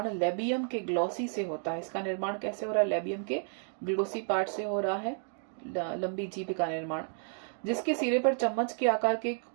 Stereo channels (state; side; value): silent; left; 57 dB below the other